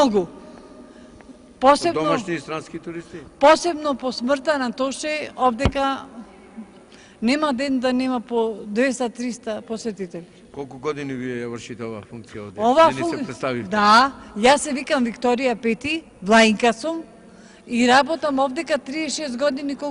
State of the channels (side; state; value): both; identical; correlation 1.00